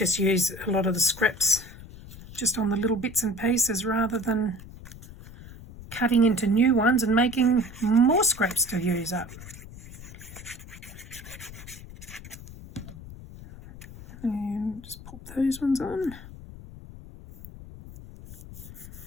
use a lot of the scraps just on the little bits and pieces rather than cutting into new ones and making more scraps to use up. And just pop those ones on.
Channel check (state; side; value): noise; left; rumble, 15 dB below the sound